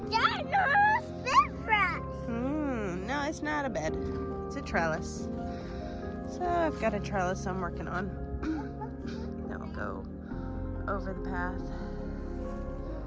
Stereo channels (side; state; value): both; identical; correlation 1.00